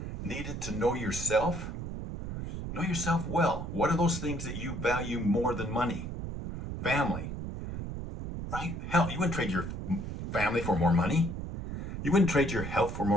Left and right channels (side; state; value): right; noise; rumble, 6 dB below the sound